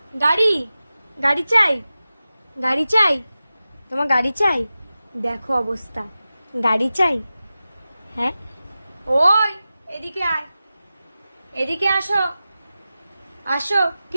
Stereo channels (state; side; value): inverted; both; correlation -0.94